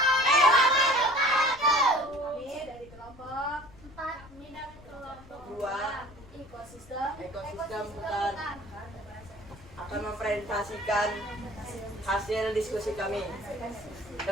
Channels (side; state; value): left; noise; rumble, 21 dB below the sound